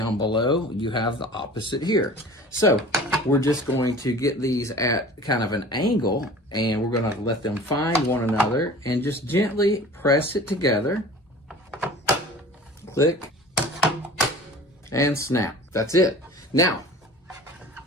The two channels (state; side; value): normal; both; correlation 0.42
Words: below, you have the opposite here. So we're just going to get these at kind of an angle, and we're going to let them find one another and just gently press it together. Click and snap. That's it. Now,